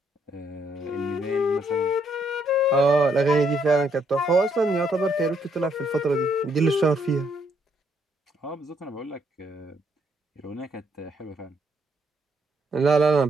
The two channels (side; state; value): both; normal; correlation 0.72